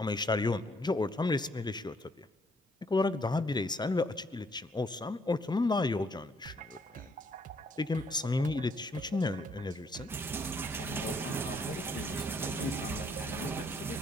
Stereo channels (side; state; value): both; normal; correlation 0.68